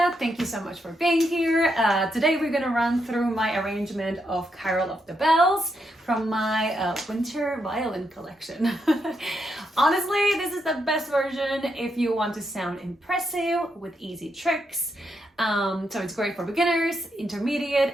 Thank you so much for being here. Today we're going to run through my arrangement of Carol of the Bells from my Winter Violin Collection. Honestly, this is the best version if you want to sound impressive with easy tricks. So it's great for beginners, intermediate,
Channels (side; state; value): both; normal; correlation 0.81